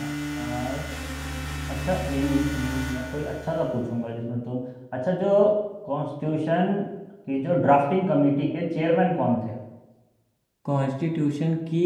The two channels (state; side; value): identical; both; correlation 1.00